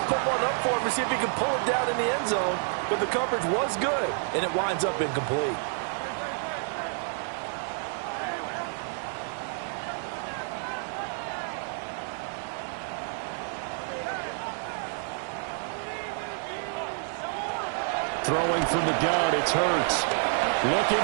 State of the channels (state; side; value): silent; left; 59 dB below the other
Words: put one up for him to see if he can pull it down in the end zone. But the coverage was good, and it winds up incomplete. Throwing from the gun, it's Hurts. Looking